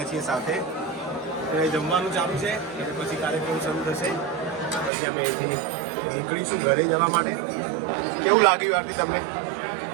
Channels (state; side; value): drops out; left; at 4.9 s